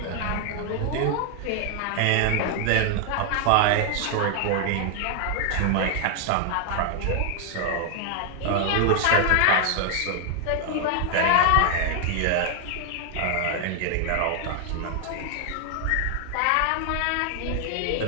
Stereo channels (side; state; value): both; different; correlation 0.00